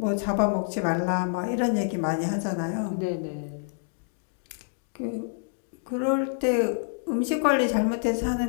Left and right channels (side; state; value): right; silent; digital silence